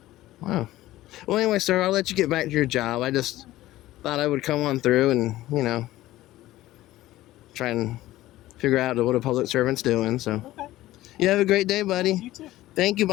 Wow. Well, anyway, sir, I'll let you get back to your job. I just thought I would come on through and, try and figure out what a public servant's doing. So, okay. You have a great day, buddy. You too. Thank you,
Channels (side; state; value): right; quieter; 15.9 dB